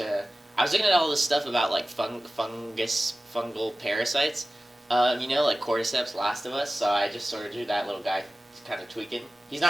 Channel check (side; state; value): both; normal; correlation 0.96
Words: looking at all this stuff about like fungal parasites, like cordyceps, Last of Us. So I just sort of drew that little guy, kind of tweaking. He's